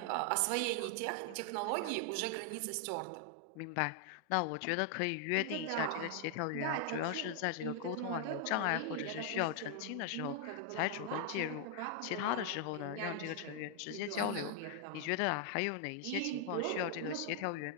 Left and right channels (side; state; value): both; different; correlation 0.00